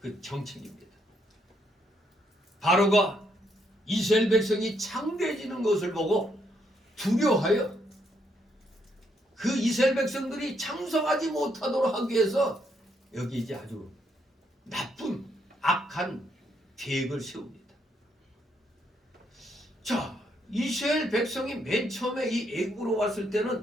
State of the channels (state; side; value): normal; both; correlation 0.74